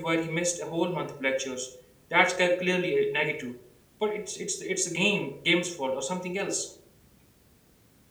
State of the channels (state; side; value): identical; both; correlation 1.00